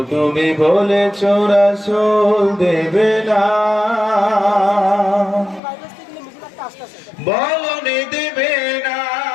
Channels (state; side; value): drops out; right; at 5.6 s